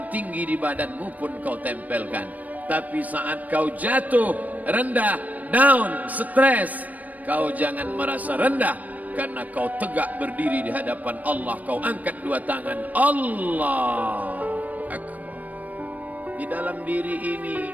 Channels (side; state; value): left; late; 0.075 ms